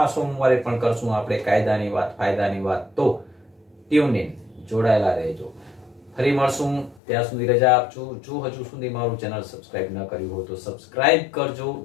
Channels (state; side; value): drops out; right; at 7.0 s